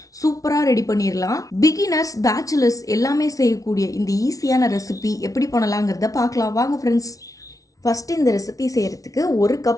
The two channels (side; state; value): right; late; 0.17 ms